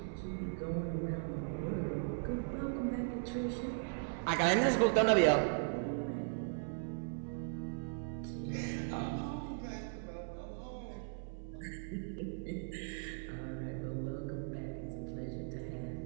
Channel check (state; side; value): silent; left; 52 dB below the other